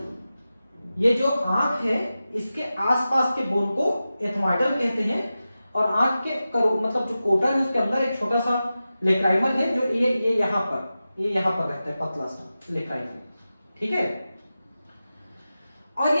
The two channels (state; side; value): inverted; both; correlation -0.94